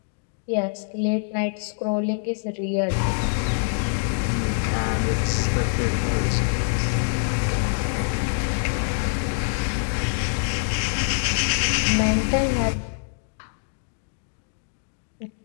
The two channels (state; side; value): silent; right; digital silence